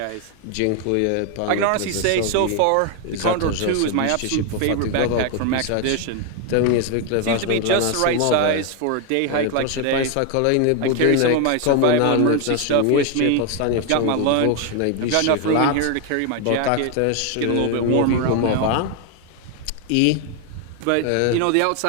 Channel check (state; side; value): different; both; correlation 0.01